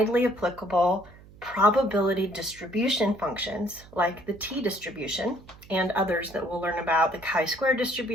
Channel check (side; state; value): right; noise; hum, 22 dB below the sound